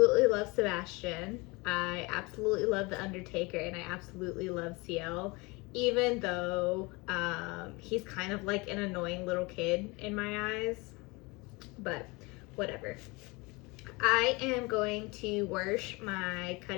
love Sebastian. I absolutely love The Undertaker, and I absolutely love CL, even though he's kind of like an annoying little kid in my eyes, but whatever. I am going to wash my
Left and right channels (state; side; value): quieter; right; 25.6 dB